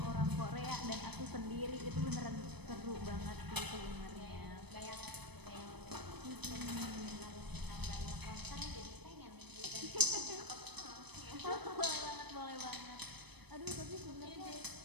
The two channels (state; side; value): late; left; 0.99 ms